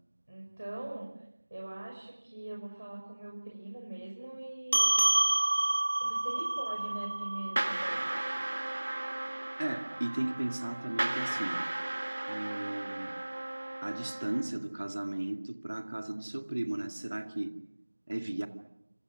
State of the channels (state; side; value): inverted; both; correlation -1.00